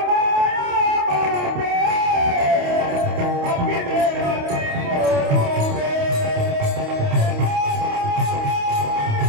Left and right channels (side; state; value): left; late; 28 ms